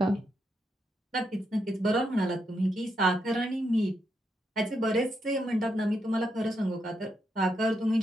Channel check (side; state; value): both; normal; correlation 0.81